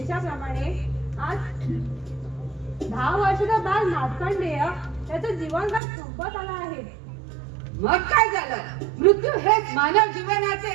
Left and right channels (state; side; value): drops out; left; at 5.8 s